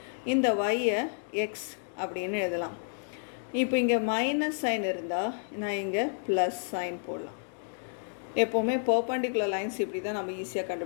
இந்த y-ஐ x அப்படின்னு எழுதலாம். இப்போ இங்கே மைனஸ் சைன் இருந்தால் நான் இங்கே ப்ளஸ் சைன் போடலாம். எப்போவுமே பர்பண்டிகுலர் லைன்ஸ் இப்படி தான் நம்ம ஈஸியாக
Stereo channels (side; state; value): right; silent; digital silence